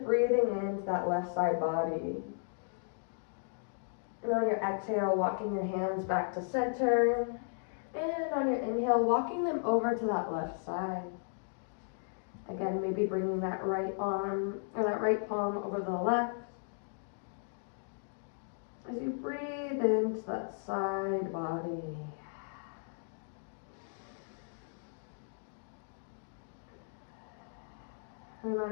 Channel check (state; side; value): silent; right; digital silence